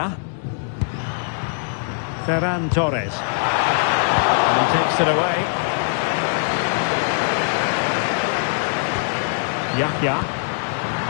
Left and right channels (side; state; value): right; silent; digital silence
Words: Ferran Torres. And he takes it away. Yahya.